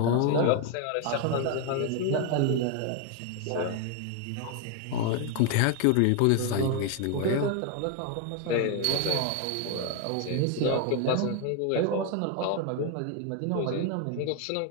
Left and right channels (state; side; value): different; both; correlation 0.01